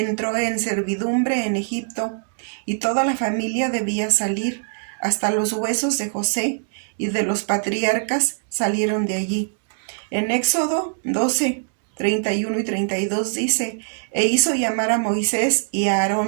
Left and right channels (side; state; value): left; silent; digital silence